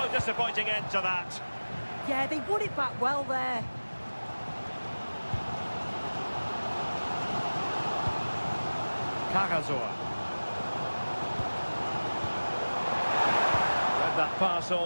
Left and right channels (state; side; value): inverted; both; correlation -1.00